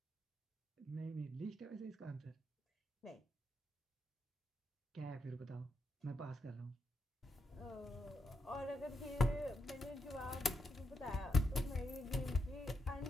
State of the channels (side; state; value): both; normal; correlation 0.82